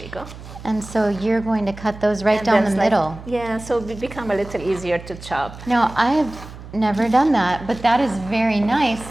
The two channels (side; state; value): right; noise; hum, 15 dB below the sound